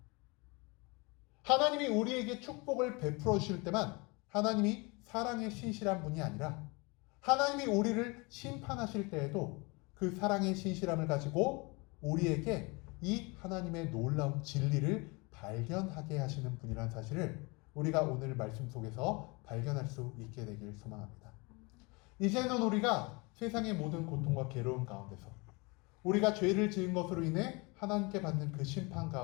하나님이 우리에게 축복을 베풀어 주실 때만 하나님이 사랑의 신실한 분이 아니라 하나님이 우리를 심판하실 때에도 그 사랑의 신실함을 가지고 우리에게 이 하나님의 놀라운 진리를 발견하게 하시는 분이라는 사실을 우리가 오늘 말씀 속에서 발견할 수 있게 되길 소망합니다. 이제는 우리가 세상의 모든 고통과 괴로움 가운데서 우리가 죄를 지은 것으로 인해 하나님께 받는 그 심판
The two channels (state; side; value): quieter; right; 27.7 dB